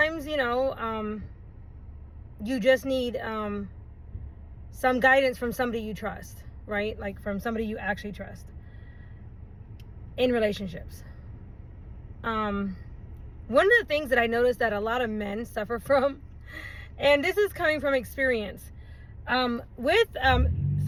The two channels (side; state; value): both; identical; correlation 1.00